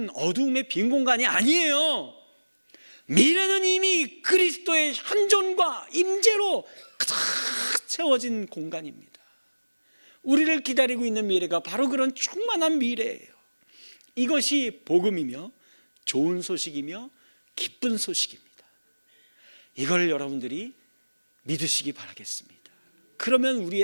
어둠의 빈 공간이 아니에요. 미래는 이미 그리스도의 현존과 임재로 가득 채워진 공간입니다. 우리를 기다리고 있는 미래가 바로 그런 충만한 미래예요. 이것이 복음이며 좋은 소식이며 기쁜 소식입니다. 이걸 여러분들이 믿으시기 바라겠습니다. 그러면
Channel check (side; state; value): both; inverted; correlation -1.00